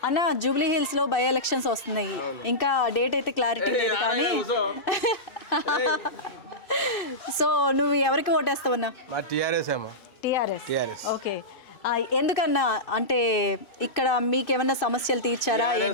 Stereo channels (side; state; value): right; late; 2.6 ms